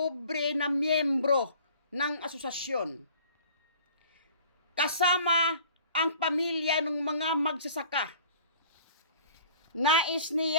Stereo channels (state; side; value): inverted; both; correlation -0.49